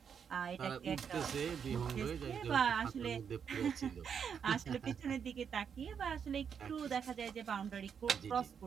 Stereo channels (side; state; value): left; quieter; 7.2 dB